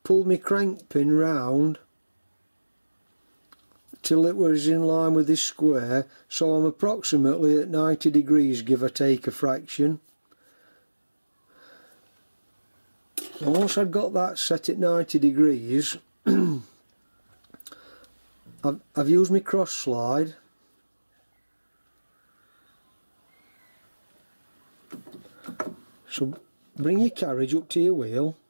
crank pin round till it was in line with this square, so I'm approximately at 90 degrees, give or take a fraction. And once I've got that set at 90 degrees, I've used my cross slide so bring your carriage up to your wheel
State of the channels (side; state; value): both; inverted; correlation -1.00